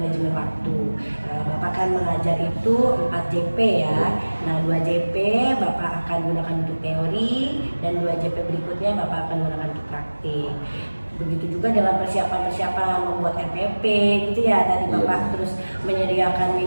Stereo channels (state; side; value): inverted; both; correlation -1.00